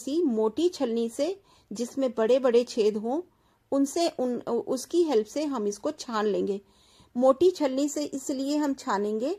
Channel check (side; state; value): both; identical; correlation 1.00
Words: मोटी छलनी से जिसमें बड़े बड़े छेद हों उनसे उसकी हेल्प से हम इसको छान लेंगे। मोटी छलनी से इसलिए हम छानेंगे